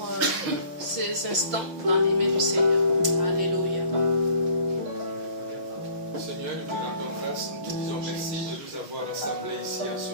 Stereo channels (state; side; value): late; left; 5.7 ms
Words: ces instants dans les mains du Seigneur. Alléluia. Seigneur, nous te rendons grâce, nous te disons merci de nous avoir rassemblés ici en